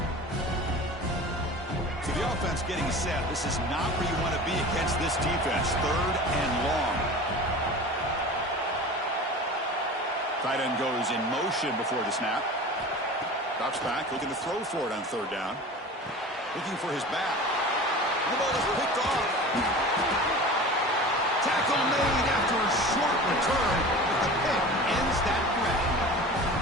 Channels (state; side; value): normal; both; correlation 0.36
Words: Getting set. This is not where you want to be against this defense. 3rd and long. Tight end goes in motion before the snap. Drops back, looking to throw for it on 3rd down. Looking for his back. The ball is picked off. Tackle made after a short return, but the pick ends that threat.